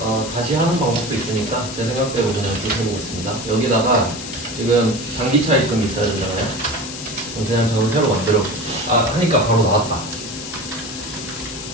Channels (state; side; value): noise; left; hiss, 9 dB below the sound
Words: 다시 하는 방법도 있으니까 제 생각대로 그냥 쭉 해보겠습니다. 여기다가 지금 단기 차입금이 있어야 되잖아요. 그냥 저는 새로 만들어 하니까 바로 나왔다.